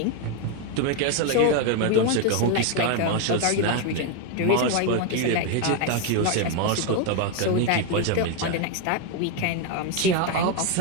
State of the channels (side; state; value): both; different; correlation 0.01